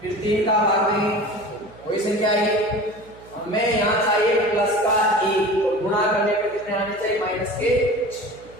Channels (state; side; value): noise; right; hum, 23 dB below the sound